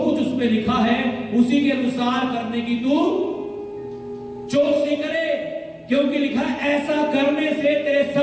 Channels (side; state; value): both; identical; correlation 1.00